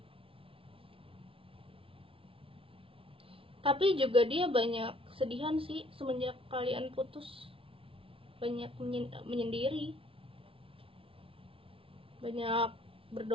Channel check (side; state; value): left; late; 0.26 ms